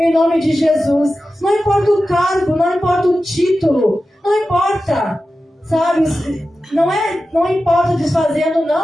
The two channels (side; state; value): both; normal; correlation 0.93